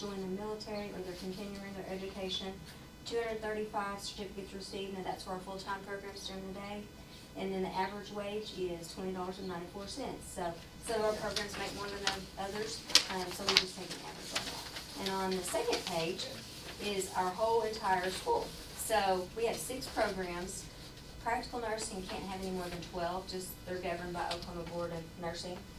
the military, or they're continuing their education. 235 certificates received, and that's for our full-time programs during the day. And then the average wage is $20.94. So some of our programs make more than others, so we just take an average on that. And on the second page is our whole entire school. So we have 6 programs. Practical nursing can't have any more than 12, just they're governed by Oklahoma Board of Nursing.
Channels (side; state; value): both; identical; correlation 1.00